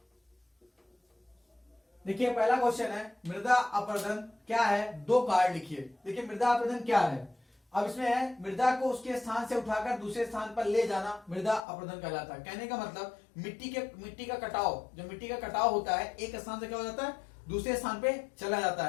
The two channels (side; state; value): right; drops out; at 11.7 s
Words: देखिए पहला क्वेश्चन है मृदा अपरदन क्या है, 2 कार्ड लिखिए। देखिए मृदा अपरदन क्या है, अब इसमें है मृदा को उसके स्थान से उठाकर दूसरे स्थान पर ले जाना मृदा अपरदन कहलाता है। कहने का मतलब मिट्टी का कटाव, जो मिट्टी का कटाव होता है एक स्थान से क्या हो जाता है दूसरे स्थान पे चला जाता